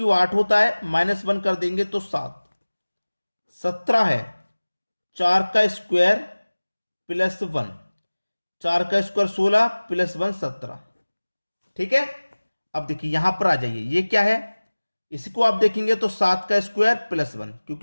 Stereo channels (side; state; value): both; inverted; correlation -1.00